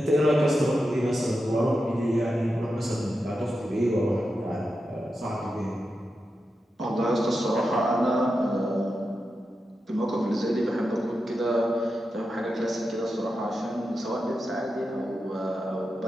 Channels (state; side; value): normal; both; correlation 0.89